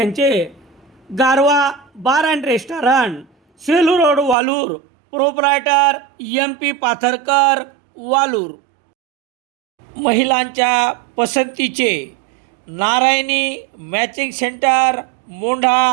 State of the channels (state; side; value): drops out; left; at 4.4 s